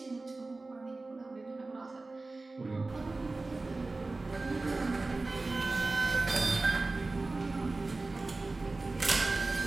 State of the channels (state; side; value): quieter; left; 3.3 dB